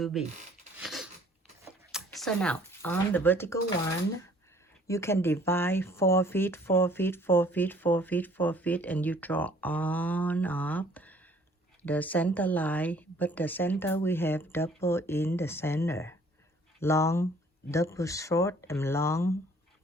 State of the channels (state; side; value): normal; both; correlation 0.57